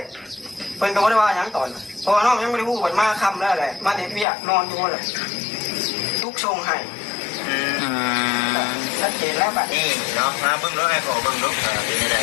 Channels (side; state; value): right; drops out; at 4.2 s